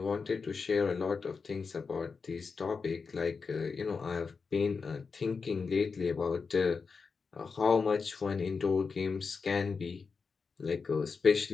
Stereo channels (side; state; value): right; quieter; 5.1 dB